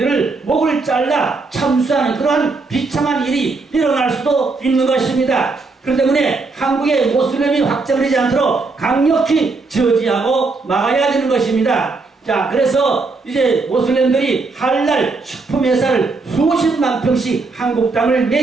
목을 잘라 참수하는 그러한 비참한 일이 일어날 수도 있는 것입니다. 그렇기 때문에 한국의 모슬렘이 확장되지 않도록 강력히 저지하고 막아야 되는 것입니다. 자, 그래서 이제 모슬렘들이 할랄 식품회사를 수십만 평씩 한국 땅을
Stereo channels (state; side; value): quieter; left; 3.8 dB